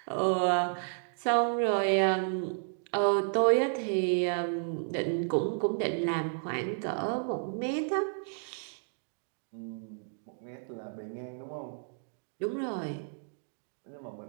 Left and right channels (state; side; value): silent; left; digital silence